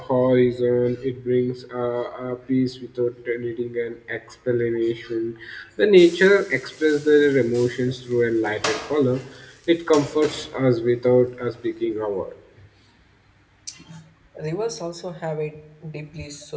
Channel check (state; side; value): identical; both; correlation 1.00